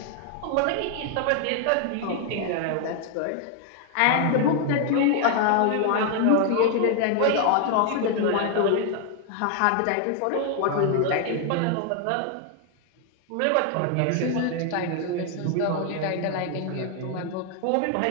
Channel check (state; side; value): different; both; correlation 0.00